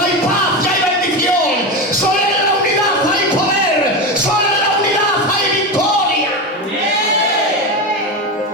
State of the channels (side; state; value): both; normal; correlation 0.18